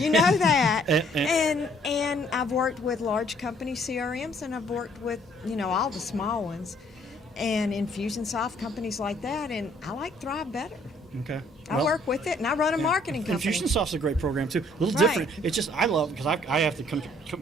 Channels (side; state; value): both; normal; correlation 0.62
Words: know that. and I've worked with large company CRMs, and I've worked with all the small ones. and Infusionsoft, companies like that, and I like Thrive better. Okay. I work with it, and I run a marketing company. Infusionsoft's a great program too. A little Right. different. It's just I love because I have to